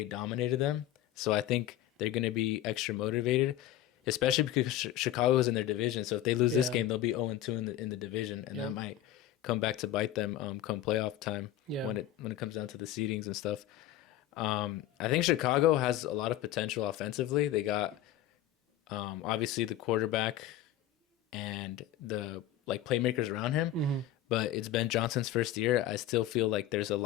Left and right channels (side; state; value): right; quieter; 12.3 dB